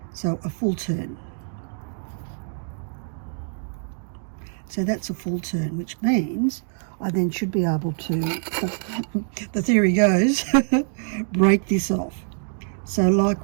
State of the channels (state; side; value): silent; left; 62 dB below the other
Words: So a full turn. So that's a full turn, which means I then should be able to, the theory goes, break this off. So like